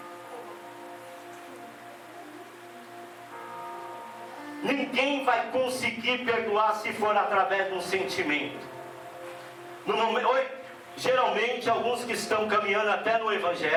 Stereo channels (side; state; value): both; identical; correlation 1.00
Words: Ninguém vai conseguir perdoar se for através de um sentimento. Geralmente, alguns que estão caminhando até no